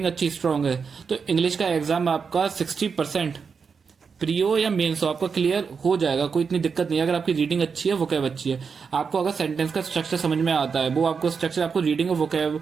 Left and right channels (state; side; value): quieter; left; 5.7 dB